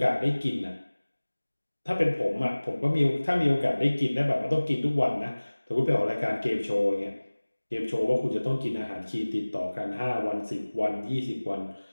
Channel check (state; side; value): inverted; both; correlation -1.00